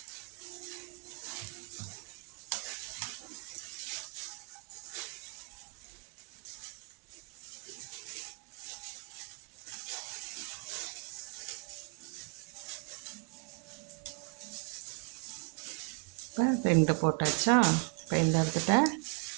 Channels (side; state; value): left; quieter; 33.7 dB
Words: இப்போ 2 போட்டாச்சா. இப்போ இந்த இடத்துல